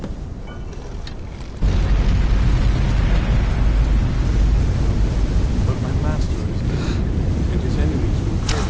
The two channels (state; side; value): identical; both; correlation 1.00